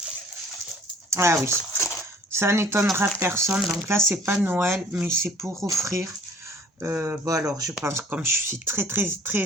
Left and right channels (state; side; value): normal; both; correlation 0.54